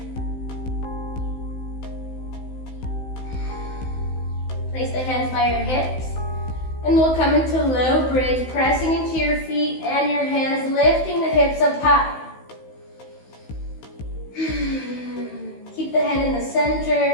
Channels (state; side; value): late; right; 16 ms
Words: Place the hands by your hips. And we'll come into low bridge, pressing into your feet and your hands, lifting the hips up high. Keep the head in the